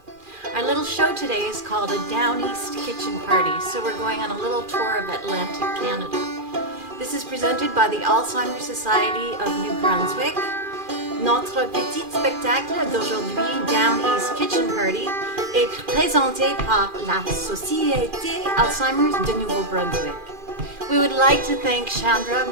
Our little show today is called a Down East Kitchen Party, so we're going on a little tour of Atlantic Canada. This is presented by the Alzheimer Society of New Brunswick. Notre petit spectacle d'aujourd'hui, Down East Kitchen Party, est présenté par la Société Alzheimer's de Nouveau-Brunswick. We would like to thank Chandra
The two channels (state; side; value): late; left; 2.4 ms